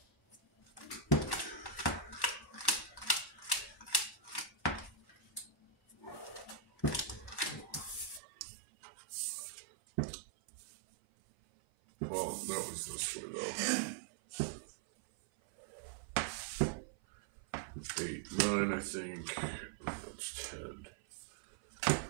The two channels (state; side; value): drops out; left; at 8.2 s